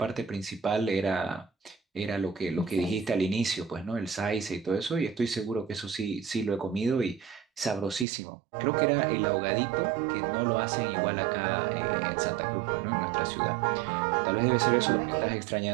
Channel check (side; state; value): left; drops out; at 8.1 s